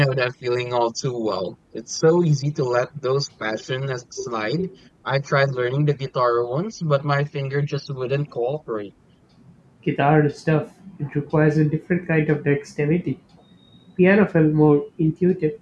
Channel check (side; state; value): both; identical; correlation 1.00